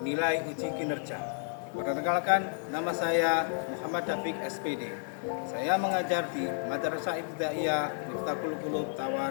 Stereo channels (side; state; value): right; silent; digital silence